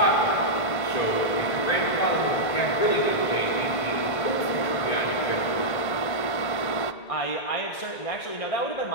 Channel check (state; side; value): late; right; 1.5 ms